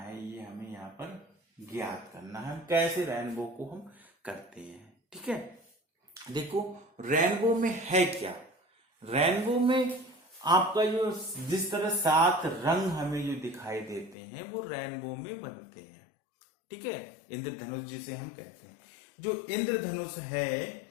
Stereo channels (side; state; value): right; drops out; at 14.2 s